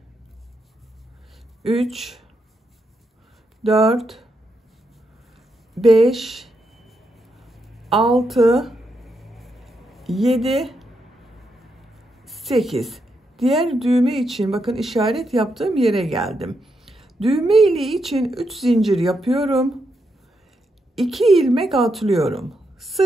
3 4 5 6 7 8. Diğer düğme için bakın işaret yaptığım yere geldim. Düğme iliği için 3 zincir yapıyorum. 2 ilmek atlıyorum.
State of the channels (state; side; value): normal; both; correlation 0.82